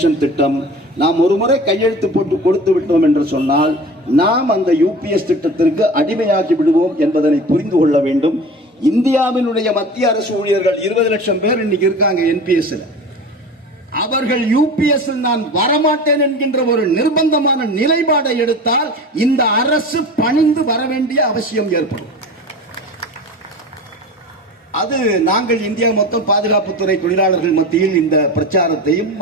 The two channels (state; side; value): normal; both; correlation 0.35